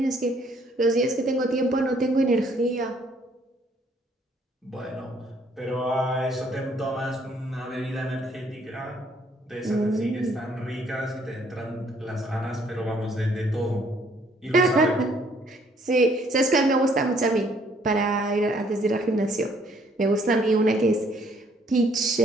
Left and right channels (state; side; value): normal; both; correlation 0.64